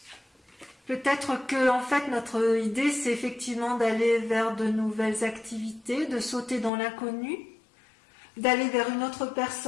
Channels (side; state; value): right; drops out; at 6.7 s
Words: Peut-être que, en fait, notre idée, c'est effectivement d'aller vers de nouvelles activités, de sauter dans l'inconnu, d'aller vers une autre